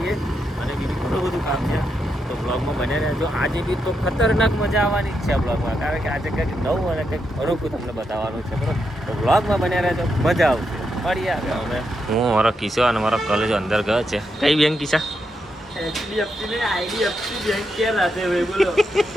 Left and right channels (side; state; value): both; normal; correlation 0.83